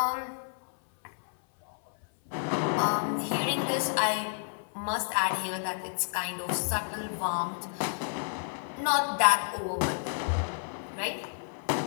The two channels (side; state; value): right; silent; 58 dB below the other